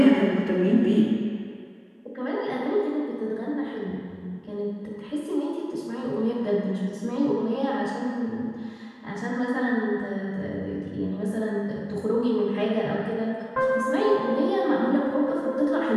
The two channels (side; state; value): both; identical; correlation 1.00